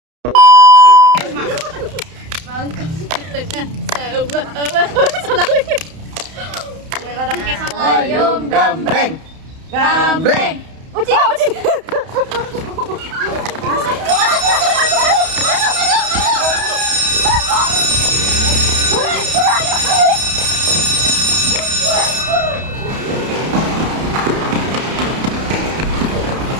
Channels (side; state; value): left; late; 31 ms